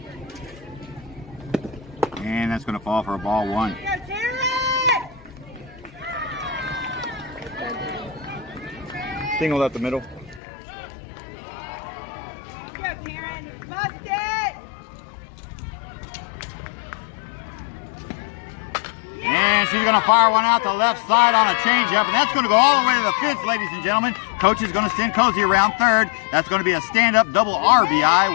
And that's going to fall for a ball 1. Single up the middle. And And she's going to fire one out the left side on a changeup, and that's going to go all the way to the fence, ladies and gentlemen. Coach is going to send Cozy around third. That's going to be a stand-up double RBI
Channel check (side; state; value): right; drops out; at 10.4 s